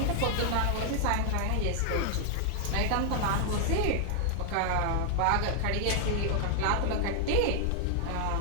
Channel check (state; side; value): different; both; correlation 0.00